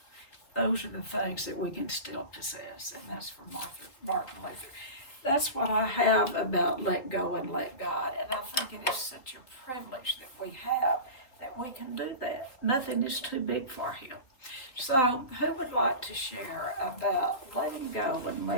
those are the things that we can still possess, and that's from Martin Luther. That's what I have about let go and let God, and I think it is such a privilege that we have, that we can do that. Nothing is too big for Him. So who would like to share about letting go and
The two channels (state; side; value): late; right; 3.7 ms